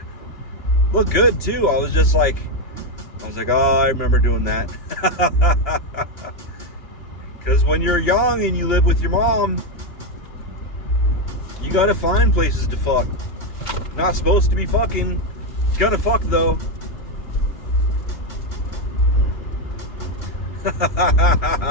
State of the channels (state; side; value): late; right; 2.8 ms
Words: looked good too. I was like, oh, I remember doing that. Because when you're young and you live with your mom, you gotta find places to fuck. Not supposed to be fucking. Gotta fuck though.